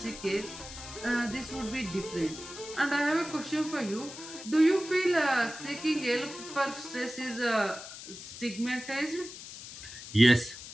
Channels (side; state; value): left; noise; hiss, 13 dB below the sound